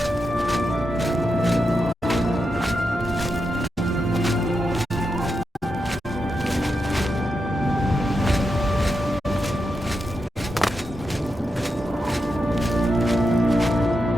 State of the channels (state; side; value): normal; both; correlation 0.86